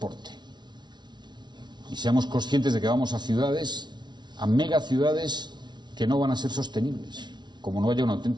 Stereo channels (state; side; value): late; left; 0.21 ms